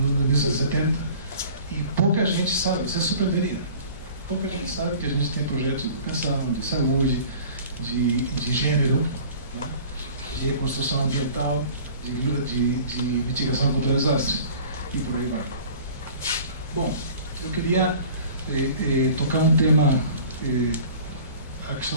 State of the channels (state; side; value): inverted; both; correlation -0.46